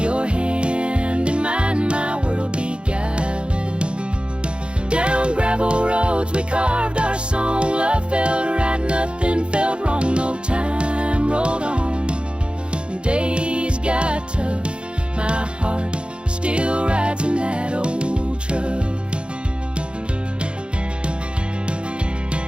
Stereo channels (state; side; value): late; left; 0.056 ms